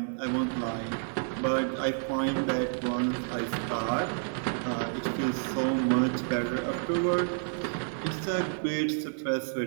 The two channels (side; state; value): left; silent; 58 dB below the other